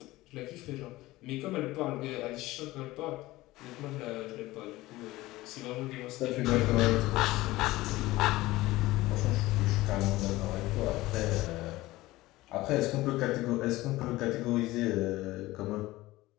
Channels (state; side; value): quieter; right; 18.4 dB